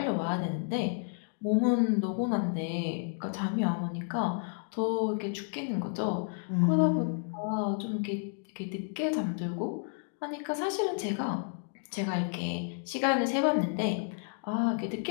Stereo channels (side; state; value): right; silent; 57 dB below the other